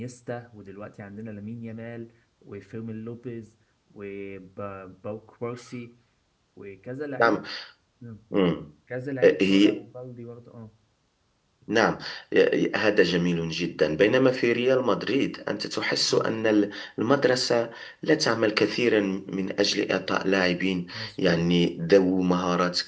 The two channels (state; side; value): identical; both; correlation 1.00